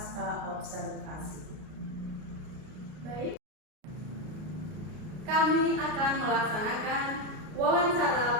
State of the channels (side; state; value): left; late; 33 ms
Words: observasi. Baik. Kami akan melaksanakan